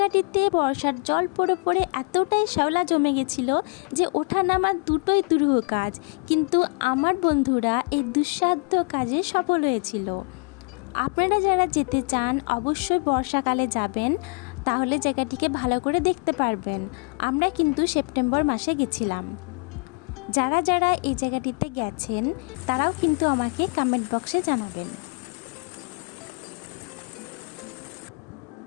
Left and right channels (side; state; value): right; quieter; 34.6 dB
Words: বর্ষার জল পড়ে পড়ে এতটাই শ্যাওলা জমে গেছিল যে ওঠা নামা দুটোই দুরূহ কাজ। কিন্তু আমার বন্ধুরা এই দুঃসাধ্য কাজে সফল হয়েছিল। আপনারা যারা যেতে চান অবশ্যই বর্ষাকালে যাবেন, তাহলে জায়গাটিকে ভালো করে দেখতে পারবেন। আমরা কিন্তু সেপ্টেম্বর মাসে গেছিলাম। যারা যারা এই জায়গাটিতে গেছেন তারাও কিন্তু আমাকে কমেন্ট বক্সে জানাবেন।